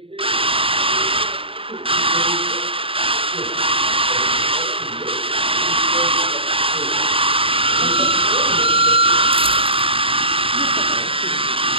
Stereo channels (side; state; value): left; late; 0.26 ms